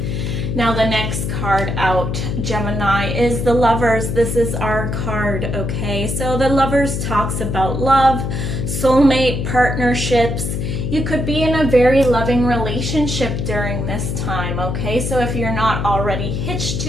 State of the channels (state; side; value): noise; left; hum, 2 dB below the sound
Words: Now the next card out, Gemini, is the Lovers. This is our card, okay? So the Lovers talks about love, soulmate, partnerships. You could be in a very loving relationship during this time, okay? So if you're not already hitched